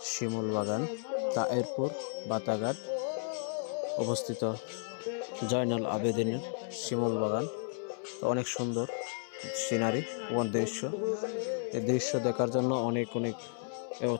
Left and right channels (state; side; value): silent; right; 55 dB below the other